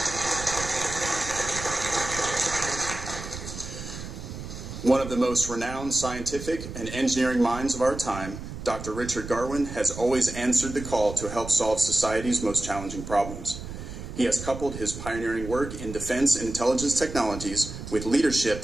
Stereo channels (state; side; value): noise; right; rumble, 10 dB below the sound